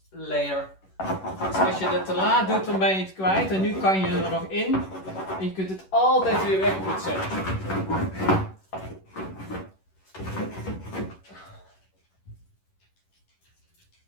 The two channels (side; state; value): right; late; 11 ms